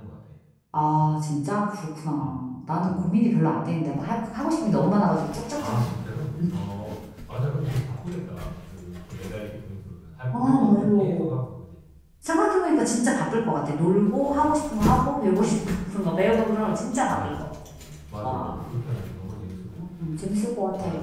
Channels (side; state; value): both; identical; correlation 1.00